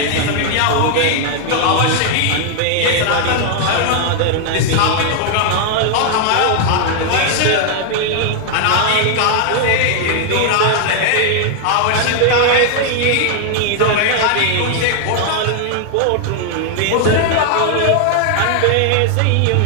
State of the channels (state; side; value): different; both; correlation 0.00